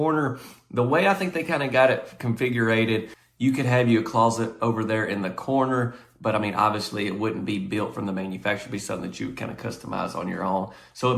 the way I think they kind of got it configured, you could have you a closet over there in the corner. But I mean, obviously it wouldn't be built from the manufacturer. It'd be something that you would kind of customize on your own. So it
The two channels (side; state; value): both; identical; correlation 1.00